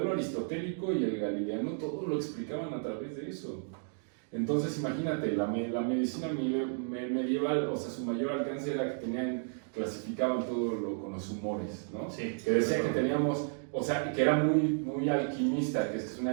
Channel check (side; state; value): left; silent; 56 dB below the other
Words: aristotélico y el galileano todo lo explicaban a través de eso. Entonces imagínate, la medicina medieval, o sea, su mayor alcance era que clasificaban todo con los humores, ¿no? Sí. Que decía que teníamos, o sea, que era muy alquimista, que es